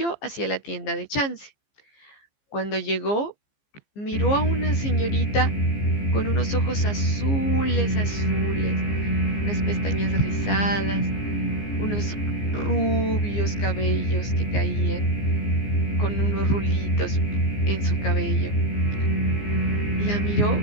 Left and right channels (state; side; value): late; right; 15 ms